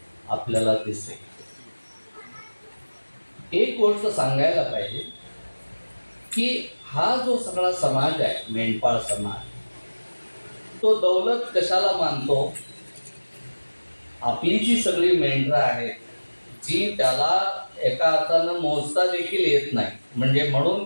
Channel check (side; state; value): both; inverted; correlation -1.00